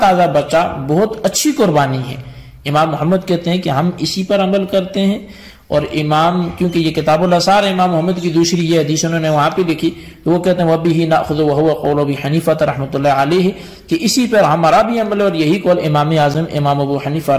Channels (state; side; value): identical; both; correlation 1.00